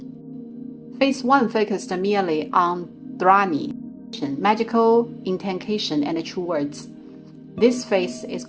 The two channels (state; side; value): identical; both; correlation 1.00